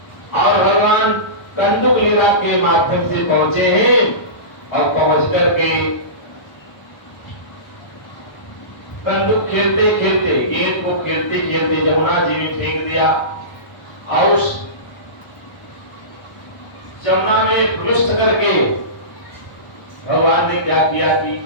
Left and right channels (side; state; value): right; late; 1.0 ms